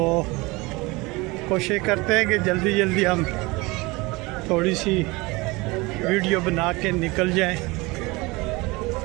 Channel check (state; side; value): quieter; left; 23.6 dB